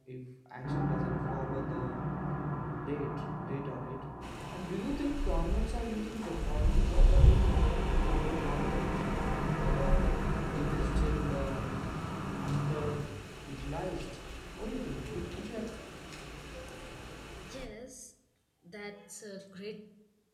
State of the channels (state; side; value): identical; both; correlation 1.00